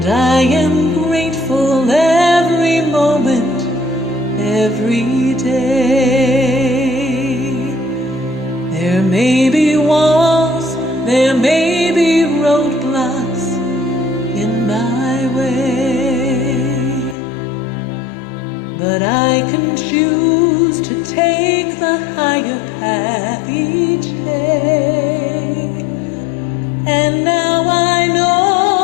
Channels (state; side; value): drops out; right; at 17.2 s